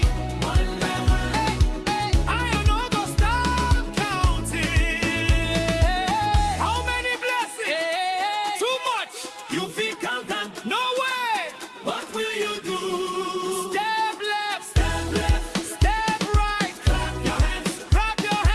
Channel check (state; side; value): identical; both; correlation 1.00